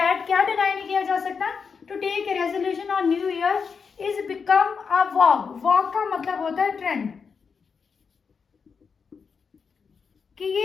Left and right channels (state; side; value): quieter; right; 5.7 dB